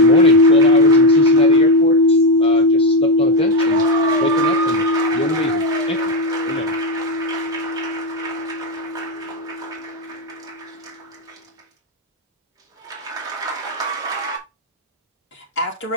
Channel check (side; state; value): both; normal; correlation 0.07